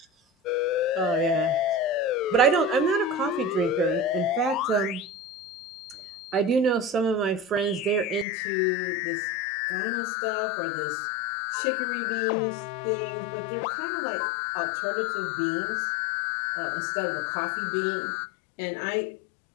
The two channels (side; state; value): right; drops out; at 8.2 s